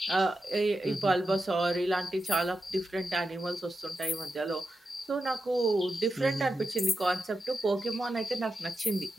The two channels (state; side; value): normal; both; correlation 0.89